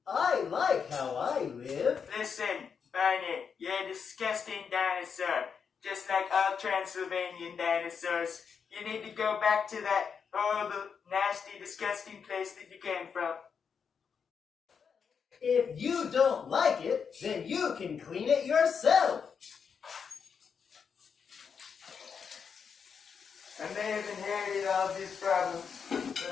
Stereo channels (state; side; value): quieter; right; 6.4 dB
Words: I like how I live. Listen, Barney, you're a disgusting dinosaur. Just like all Transylvanian dinosaurs. You need to go back to that horrible, nasty, disgusting place that you came from. If you don't like it, then you can clean it yourself. I may have inherited all of these problems, but I'm